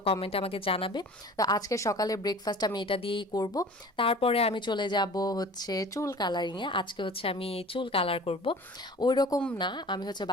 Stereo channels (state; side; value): normal; both; correlation 0.43